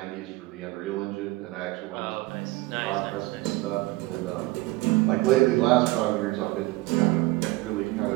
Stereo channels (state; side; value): quieter; left; 20.6 dB